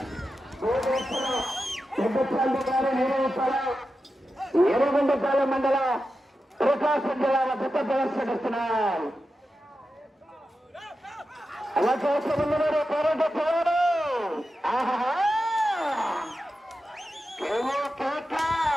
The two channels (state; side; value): normal; both; correlation 0.91